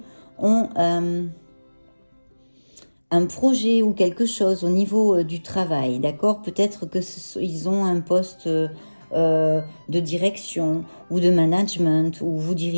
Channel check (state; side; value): inverted; both; correlation -1.00